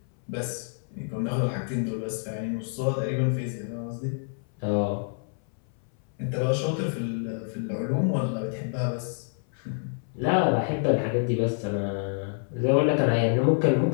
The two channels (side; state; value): right; silent; 60 dB below the other